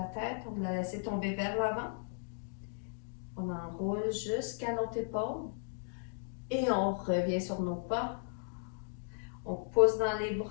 tête. On va la laisser tomber vers l'avant. On enroule jusqu'à notre épaule. Et on revient sur nos pas. On pousse dans les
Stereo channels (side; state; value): right; silent; digital silence